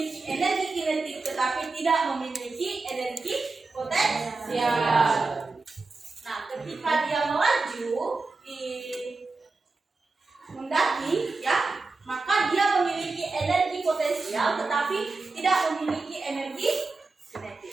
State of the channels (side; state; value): left; quieter; 3.8 dB